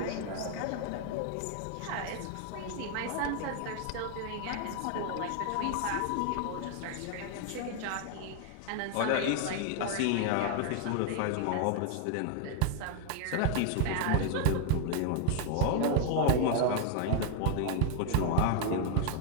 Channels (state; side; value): different; both; correlation 0.00